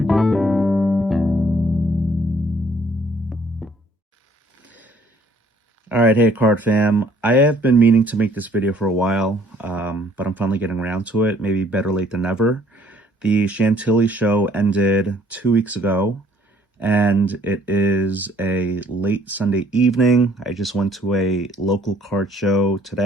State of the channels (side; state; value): both; normal; correlation 0.61